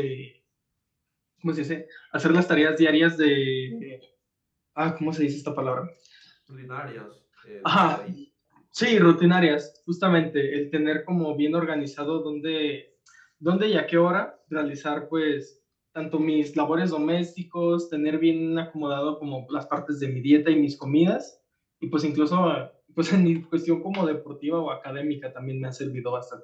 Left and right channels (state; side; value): identical; both; correlation 1.00